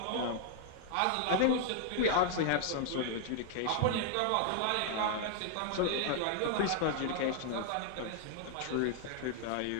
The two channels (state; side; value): different; both; correlation 0.00